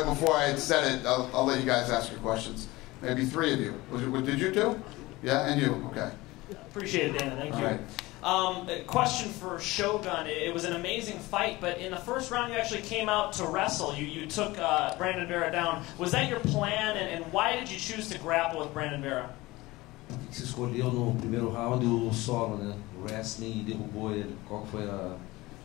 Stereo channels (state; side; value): quieter; right; 20.3 dB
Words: before I had said it. I'll let you guys ask your questions. Maybe 3 of you. Did you 2? Yeah, and you. Okay. Appreciate it, Dana. Thank you. A question for Shogun. It was an amazing fight, but in the first round you actually came out to wrestle. You took Brandon Vera down. Was that your plan, and why did you choose to grapple with Brandon Vera? Você escolheu no primeiro round o solo, né? O wrestling e derrubou ele. Qual foi a